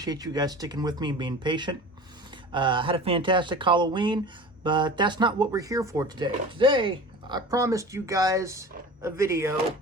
you guys sticking with me and being patient. Had a fantastic Halloween, but that's not what we're here for today. Today, I promised you guys a video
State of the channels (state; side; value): normal; both; correlation 0.37